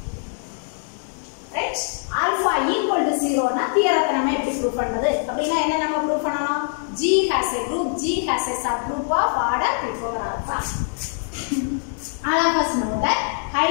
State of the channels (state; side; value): silent; right; digital silence